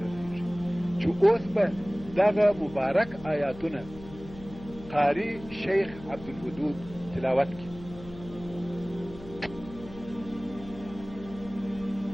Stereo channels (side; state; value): left; noise; hum, 16 dB below the sound